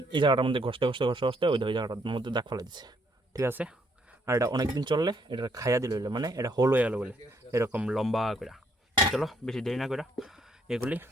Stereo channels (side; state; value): both; normal; correlation 0.70